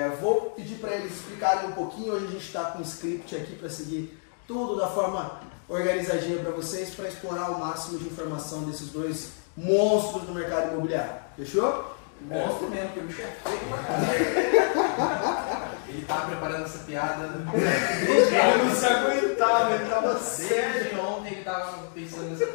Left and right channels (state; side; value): silent; right; 60 dB below the other